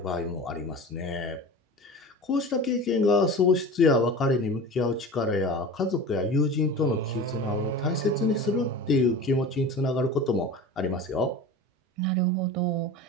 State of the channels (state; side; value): normal; both; correlation 0.34